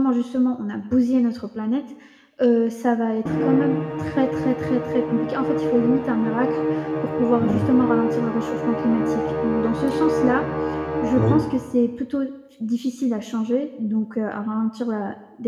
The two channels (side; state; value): both; identical; correlation 1.00